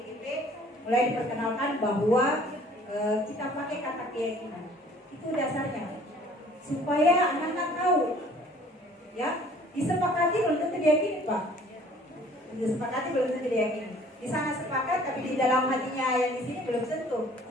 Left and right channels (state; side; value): normal; both; correlation 0.54